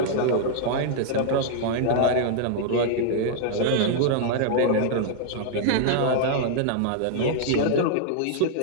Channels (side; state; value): both; different; correlation -0.01